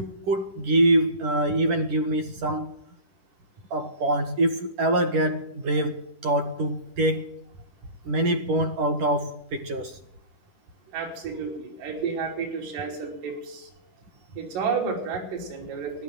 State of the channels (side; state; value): left; late; 10 ms